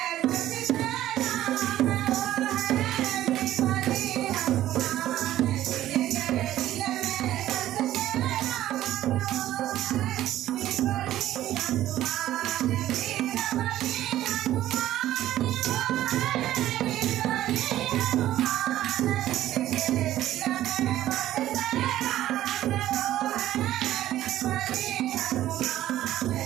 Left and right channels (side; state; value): left; quieter; 13.5 dB